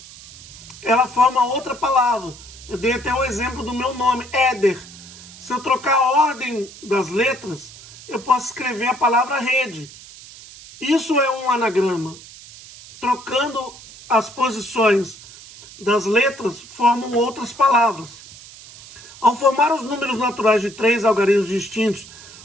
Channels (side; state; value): right; noise; hiss, 18 dB below the sound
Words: ela forma outra palavra. Eu dei até o exemplo do meu nome, Éder. Se eu trocar a ordem das letras, eu posso escrever a palavra rede. Isso é um anagrama. Trocando as posições das letras, formam outras palavras. Ao formar os números naturais de 3 algarismos distintos